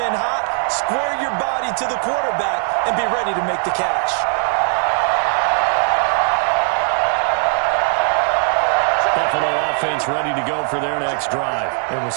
hot. Square your body to the quarterback and be ready to make the catch. Buffalo offense ready to go for their next drive. It was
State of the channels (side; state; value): left; silent; 56 dB below the other